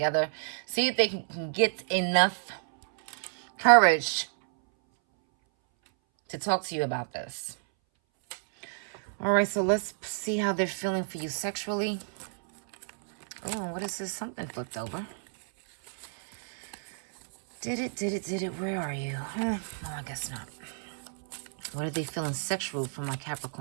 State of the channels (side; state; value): left; silent; 58 dB below the other